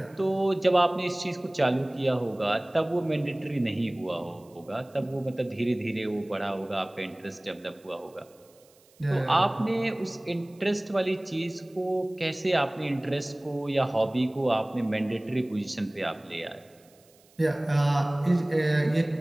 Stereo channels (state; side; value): noise; right; hiss, 30 dB below the sound